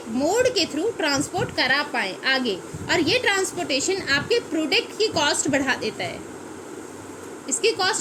मोड के थ्रू ट्रांसपोर्ट करा पाएँ आगे। और ये ट्रांसपोर्टेशन आपके प्रोडक्ट की कॉस्ट बढ़ा देता है, इसकी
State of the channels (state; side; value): identical; both; correlation 1.00